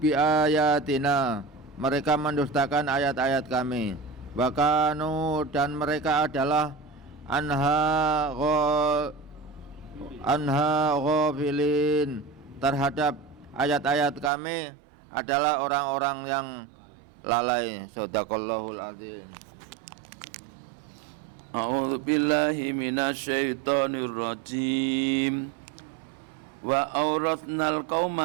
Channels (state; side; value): drops out; left; at 14.3 s